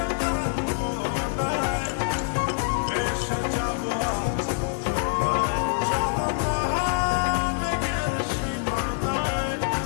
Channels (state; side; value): silent; right; 57 dB below the other